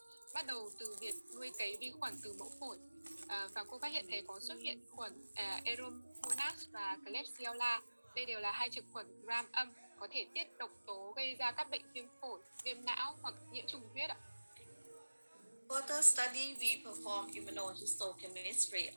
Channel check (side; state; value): both; inverted; correlation -1.00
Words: bắt đầu từ việc nuôi cấy vi khuẩn từ mẫu phổi. Và cô phát hiện thấy có xuất hiện khuẩn Aeromonas và Klebsiella. Đây đều là hai trực khuẩn gram âm có thể tiết độc tố gây ra các bệnh viêm phổi, viêm não hoặc nhiễm trùng huyết ạ. Further study, we perform immunohistochemistry